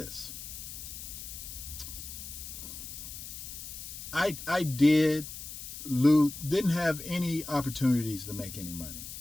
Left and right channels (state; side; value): noise; left; hiss, 10 dB below the sound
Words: I didn't have any opportunities to make any money.